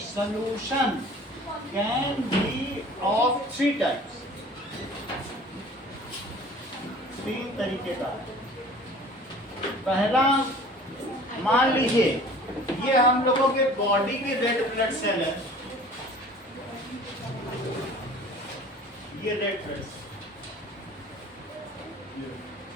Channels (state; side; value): normal; both; correlation 0.46